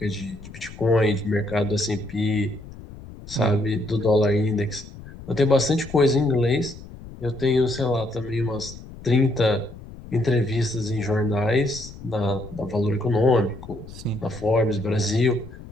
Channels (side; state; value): left; noise; rumble, 15 dB below the sound